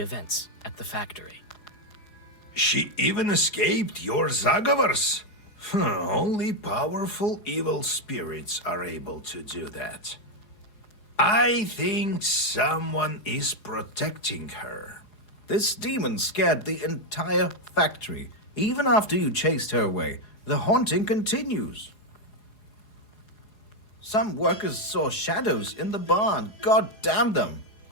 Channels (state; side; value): late; right; 4.8 ms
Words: at the factory. She even escaped your Zagavars. Only powerful evil spirits are able to do that. I think someone is protecting her. This demon scared the entire factory. Even after you chased her away, the haunting continues. Some workers saw shadows in the barn. God damn them.